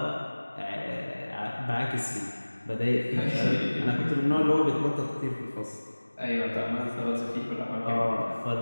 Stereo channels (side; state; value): both; inverted; correlation -1.00